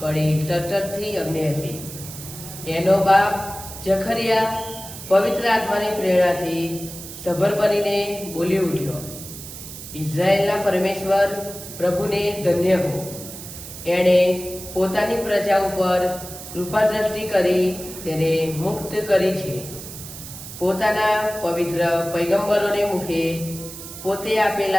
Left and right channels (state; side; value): noise; right; hiss, 12 dB below the sound